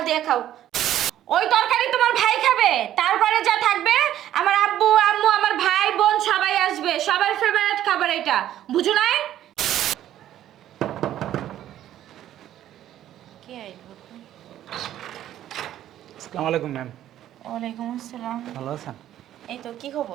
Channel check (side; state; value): left; quieter; 12.1 dB